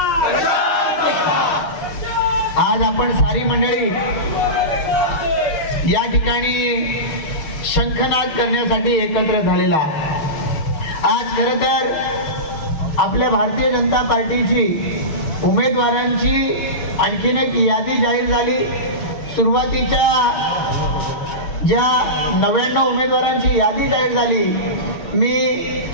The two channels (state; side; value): late; right; 6.3 ms